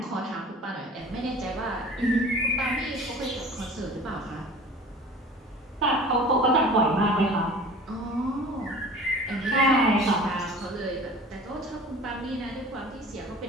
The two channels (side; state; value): both; normal; correlation 0.42